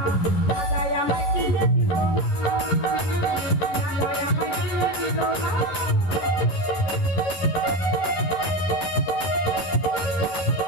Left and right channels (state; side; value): late; right; 11 ms